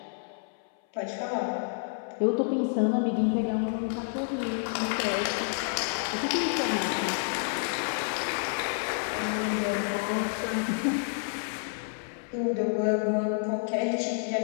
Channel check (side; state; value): right; silent; 58 dB below the other